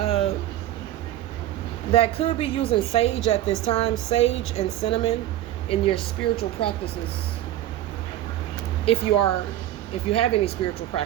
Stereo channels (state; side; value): quieter; left; 13.4 dB